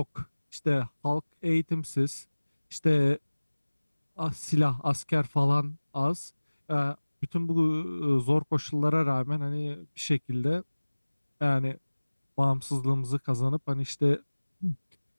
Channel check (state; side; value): inverted; both; correlation -1.00